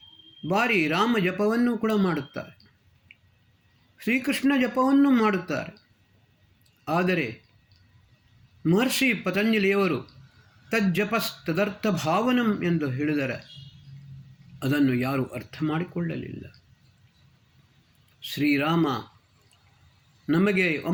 ಬಾರಿ ರಾಮ ಜಪವನ್ನು ಕೂಡ ಮಾಡುತ್ತಾರೆ, ಶ್ರೀಕೃಷ್ಣ ಜಪವನ್ನು ಮಾಡುತ್ತಾರೆ. ಆದರೆ ಮಹರ್ಷಿ ಪತಂಜಲಿಯವರು ತಜ್ಜಪಸ್ತದರ್ಥ ಭಾವನಂ ಎಂದು ಹೇಳಿದರೆ ಅದನ್ನು ಯಾರೂ ಅರ್ಥ ಮಾಡಿಕೊಳ್ಳಲಿಲ್ಲ. ಶ್ರೀರಾಮ ನಮಗೆ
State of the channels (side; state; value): both; identical; correlation 1.00